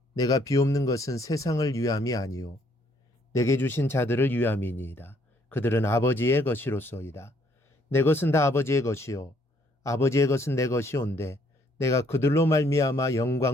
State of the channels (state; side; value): normal; both; correlation 0.66